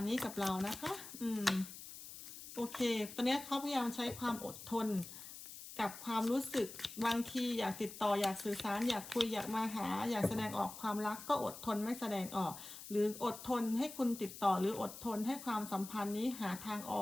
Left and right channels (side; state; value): left; noise; hiss, 12 dB below the sound